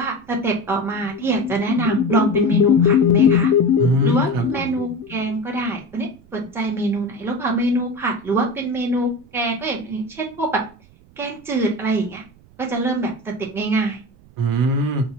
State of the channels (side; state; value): right; noise; rumble, 27 dB below the sound